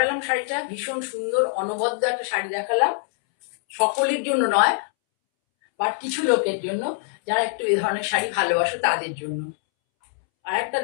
শাড়িটা, ভীষণ সুন্দর অনবদ্য একটা শাড়ি দেখালাম। সকলের জন্য নয়, বাট কিছু লোকের জন্য যারা একটু এই ধরনের শাড়ি ভালোবাসো তাদের জন্য। আর একটা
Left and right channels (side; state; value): right; silent; 63 dB below the other